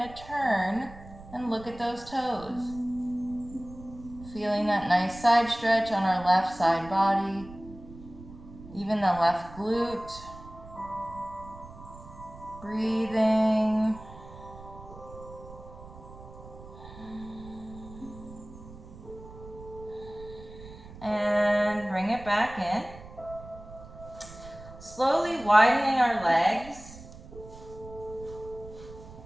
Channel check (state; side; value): noise; right; rumble, 17 dB below the sound